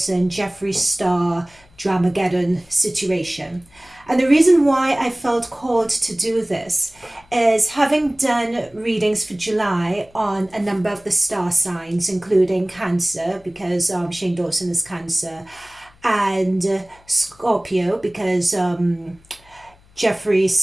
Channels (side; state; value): left; noise; hum, 29 dB below the sound